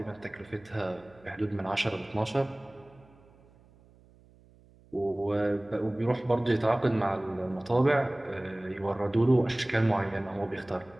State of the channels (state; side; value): noise; right; hum, 27 dB below the sound